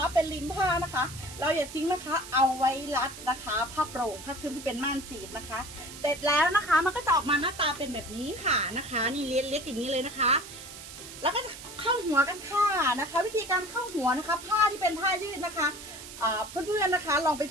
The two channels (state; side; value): noise; right; hiss, 13 dB below the sound